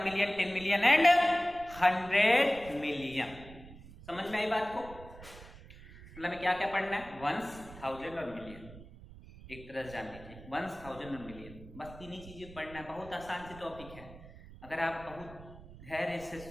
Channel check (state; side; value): noise; right; rumble, 17 dB below the sound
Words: मिलियन 10 मिलियन एंड 100 मिलियन। समझ में आई बात को? मतलब में क्या क्या पढ़ना है, वंस, 1000 और मिलियन, एक तरह से जान लीजिए, वंस, 1000 और मिलियन, बस 3 ही चीजें पढ़ना है। बहुत आसान सी टॉपिक है, अगर आप बहुत धैर्य से